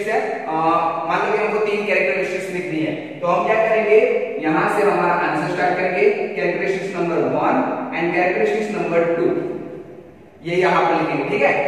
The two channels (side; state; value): both; identical; correlation 1.00